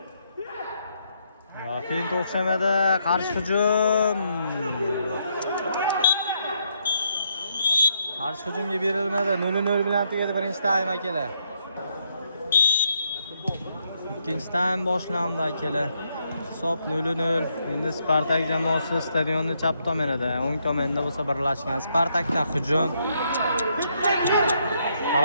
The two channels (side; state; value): both; inverted; correlation -0.75